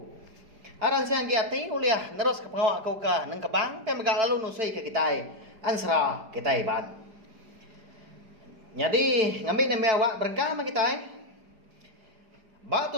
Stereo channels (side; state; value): left; late; 4.9 ms